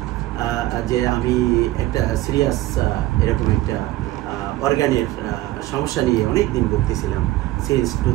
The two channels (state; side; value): quieter; left; 16.7 dB